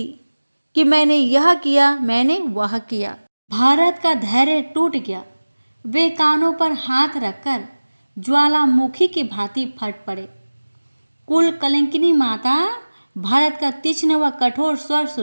कि मैंने यह किया, मैंने वह किया। भारत का धैर्य टूट गया। वे कानों पर हाथ रखकर ज्वालामुखी की भांति फट पड़े। कुल कलंकिनी माता भारत का तीक्ष्ण व कठोर स्वर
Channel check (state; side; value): inverted; both; correlation -1.00